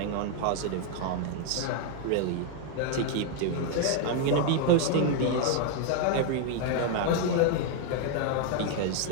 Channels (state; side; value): different; both; correlation 0.00